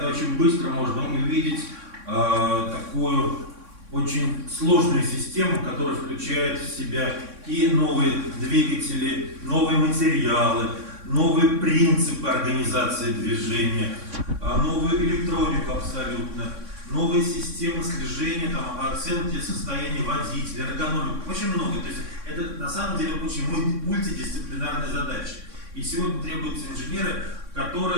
очень быстро можно увидеть такую очень сложную систему, которая включает в себя и новые двигатели, новые материалы, новые принципы организации движения, новую электронику абсолютно, новые системы слежения, оценки состояния водителя, эргономику, очень много. То есть это на самом деле очень мультидисциплинарная задача. И сегодня требуются инженеры,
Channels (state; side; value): late; left; 3.6 ms